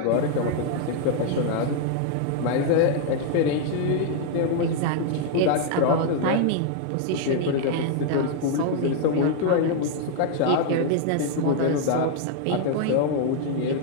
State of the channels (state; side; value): different; both; correlation 0.00